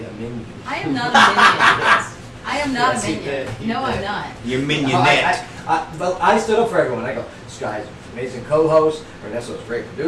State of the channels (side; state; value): both; identical; correlation 1.00